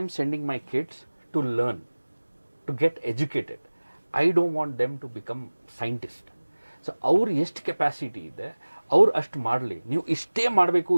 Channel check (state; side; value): inverted; both; correlation -1.00